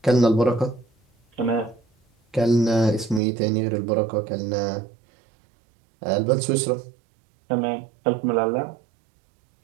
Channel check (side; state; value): left; drops out; at 3.2 s